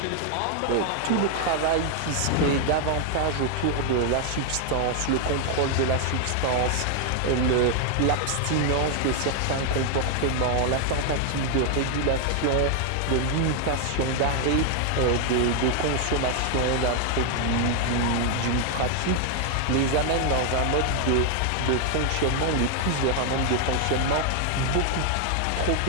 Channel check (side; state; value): both; different; correlation 0.00